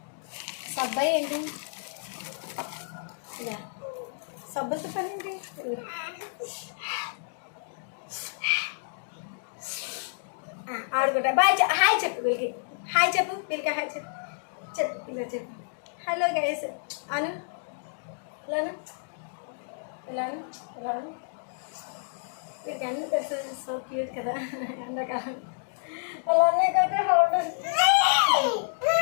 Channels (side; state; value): right; silent; digital silence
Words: సబ్బాయి ఏంటి? సబ్బులతో పని ఏంటి? ఆడుకుంటా. బాయ్, హాయ్ చెప్పు వీళ్ళకి, హాయ్ చెప్పు వీళ్ళకి, హాయ్ చెప్పు, చెప్పు ఇలా చెప్పు. హలో గైస్ అను, ఇలాను ఇలాను ఇలాను. వీళ్ళకి అన్నీ తెలుసు. సో క్యూట్ కదా ఎండాకాలం. అలానే కదా